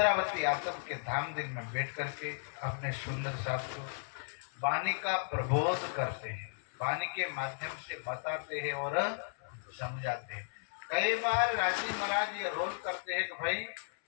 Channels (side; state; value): right; silent; 54 dB below the other